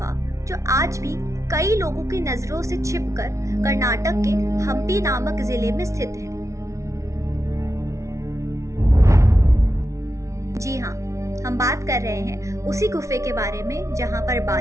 जो आज भी कई लोगों की नजरों से छिपकर कर्नाटक के हम्पी नामक जिले में स्थित है। जी हाँ, हम बात कर रहे हैं उसी गुफे के बारे में जहाँ पर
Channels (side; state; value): left; late; 0.14 ms